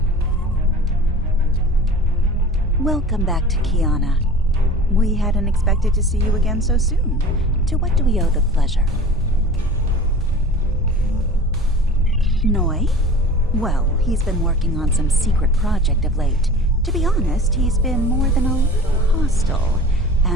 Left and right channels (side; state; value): both; normal; correlation 0.40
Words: Welcome back to Kiana. We hadn't expected to see you again so soon. To what do we owe the pleasure? Noi? Well, he's been working on some secret project of late. To be honest, he's been more than a little hostile.